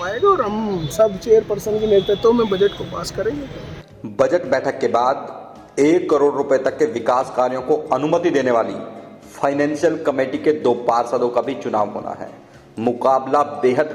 और हम सब चेयरपर्सन के नेतृत्व में बजट को पास करेंगे। बजट बैठक के बाद 1 करोड़ रुपए तक के विकास कार्यों को अनुमति देने वाली फाइनेंशियल कमेटी के 2 पार्षदों का भी चुनाव होना है। मुकाबला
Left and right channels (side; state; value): both; identical; correlation 1.00